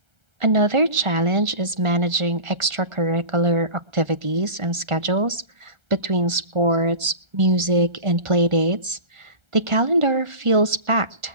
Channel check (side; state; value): left; late; 1.3 ms